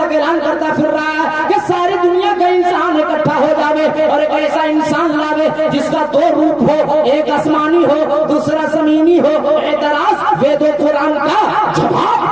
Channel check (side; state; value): left; noise; hum, 28 dB below the sound